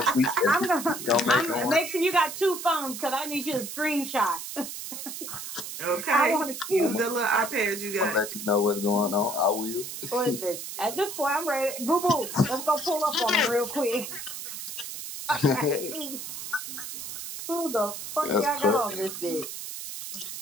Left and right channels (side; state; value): right; noise; hiss, 8 dB below the sound